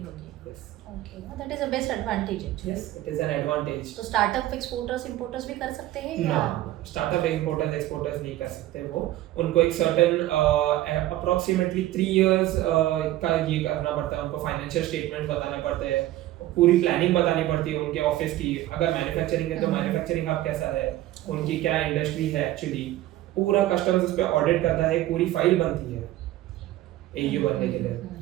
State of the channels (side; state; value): left; quieter; 15.1 dB